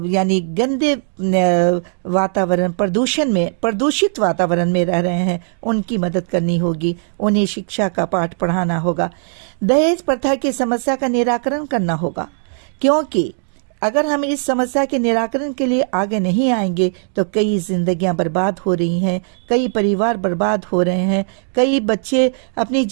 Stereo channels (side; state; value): left; silent; digital silence